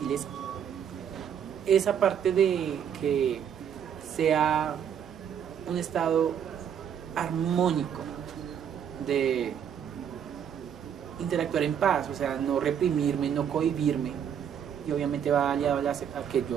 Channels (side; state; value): left; quieter; 8.5 dB